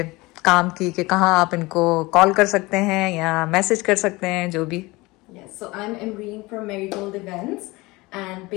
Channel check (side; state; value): right; quieter; 22.2 dB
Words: काम की, कि कहाँ आप इनको कॉल कर सकते हैं या मैसेज कर सकते हैं, जो भी। Yes, so I'm Emreen from Marigold Events, and